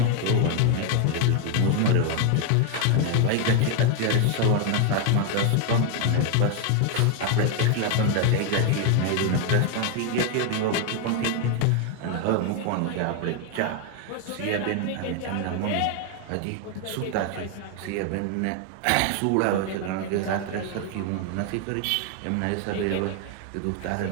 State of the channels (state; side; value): different; both; correlation 0.01